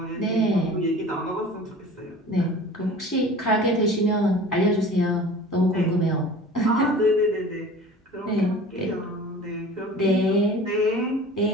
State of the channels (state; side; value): normal; both; correlation 0.41